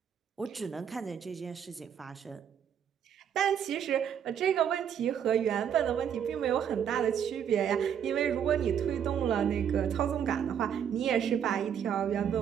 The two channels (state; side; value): quieter; left; 8.6 dB